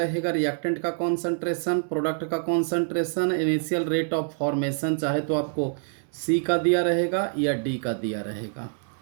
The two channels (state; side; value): silent; left; digital silence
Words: रिएक्टेंट का कॉन्सेंट्रेशन, प्रोडक्ट का concentration, initial rate of formation चाहे तो आपको सी का दिया रहेगा या डी का दिया रहेगा,